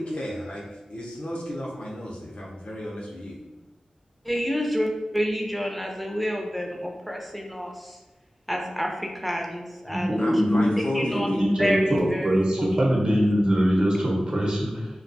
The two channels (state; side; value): normal; both; correlation 0.96